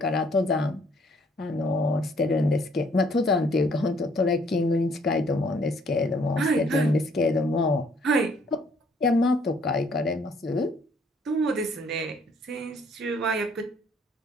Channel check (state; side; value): normal; both; correlation 0.63